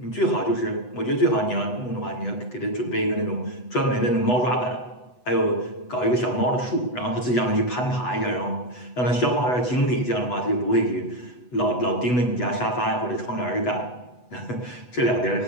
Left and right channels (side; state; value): right; late; 8.1 ms